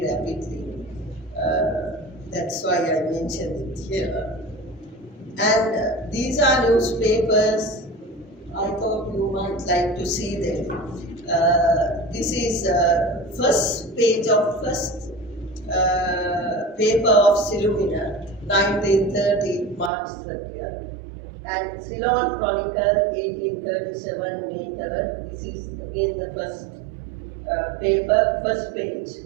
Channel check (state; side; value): drops out; left; at 19.9 s